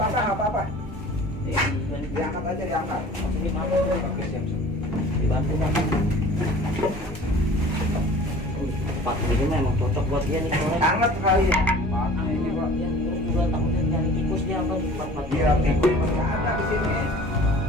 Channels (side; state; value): both; normal; correlation 0.45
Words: apa-apa. Iya, Diangkat aja, diangkat. ini apa? Dibantu Pak. tempat ini memang cocok buat dia nih soalnya. Hangat sekali ya. Ini Pak, ya, terus juga takutnya nyari tikus dia apa di tempat Iya, tikus masih ada di sini.